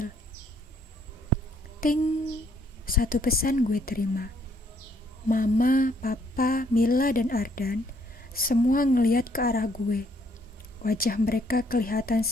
Ting, satu pesan gue terima. Mama, Papa, Mila, dan Ardan semua ngeliat ke arah gue. Wajah mereka kelihatan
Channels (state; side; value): normal; both; correlation 0.68